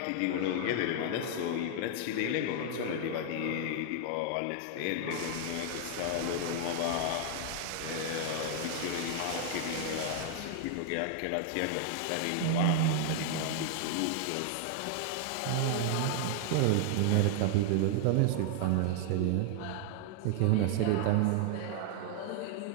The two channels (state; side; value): different; both; correlation 0.00